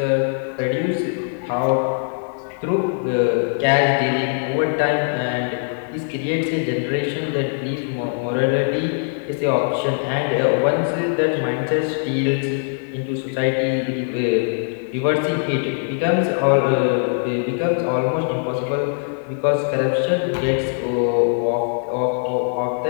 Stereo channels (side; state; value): right; silent; 55 dB below the other